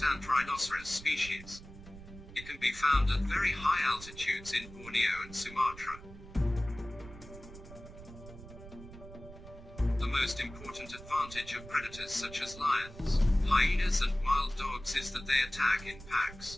rhinoceros species. It can be found at very high altitudes in Borneo and Sumatra. The most important advantage of predators such as lions, hyenas and wild dogs is that they attack in packs.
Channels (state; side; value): noise; right; rumble, 16 dB below the sound